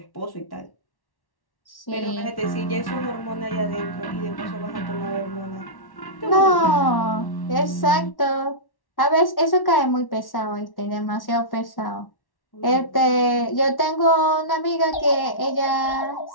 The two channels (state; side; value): late; right; 1.1 ms